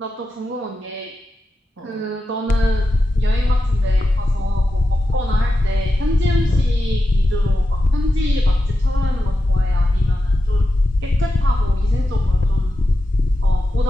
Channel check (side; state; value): both; normal; correlation 0.90